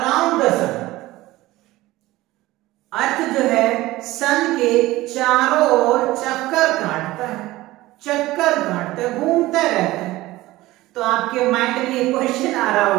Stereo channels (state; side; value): quieter; left; 17.9 dB